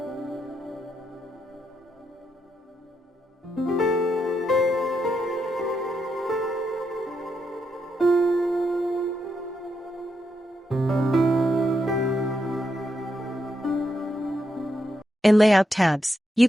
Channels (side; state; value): both; normal; correlation 0.82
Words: In Layout tabs,